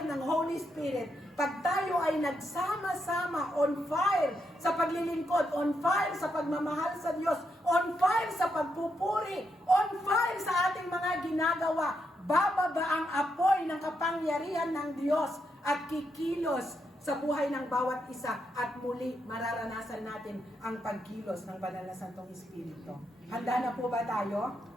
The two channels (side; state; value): both; normal; correlation 0.81